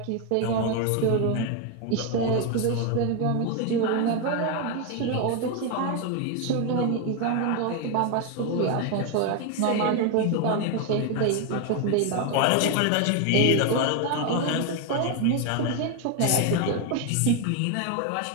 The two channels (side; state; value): both; different; correlation 0.01